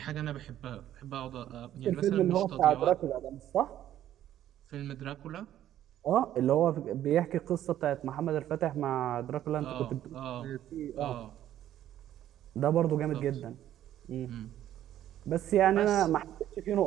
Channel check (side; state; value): left; quieter; 12.0 dB